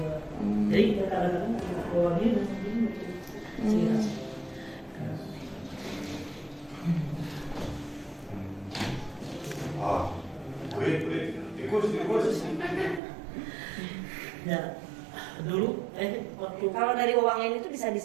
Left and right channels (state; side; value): drops out; left; at 13.0 s